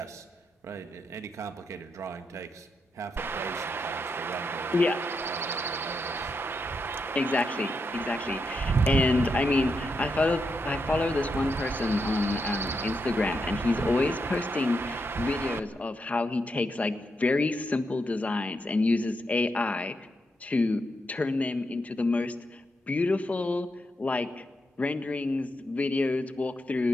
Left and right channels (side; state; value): both; normal; correlation 0.83